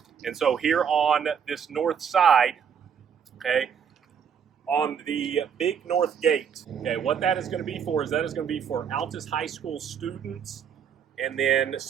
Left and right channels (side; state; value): left; quieter; 7.6 dB